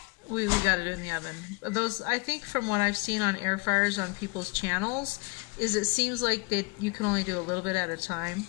got it in the oven. Those, I think from what I've seen on air fryers on people's channels, is it seems like you can only do a little bit at a time.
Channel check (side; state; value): right; quieter; 27.7 dB